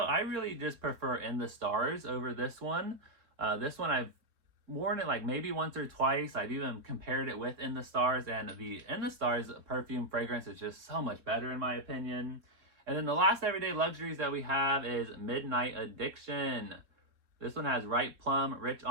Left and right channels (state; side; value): late; left; 3.6 ms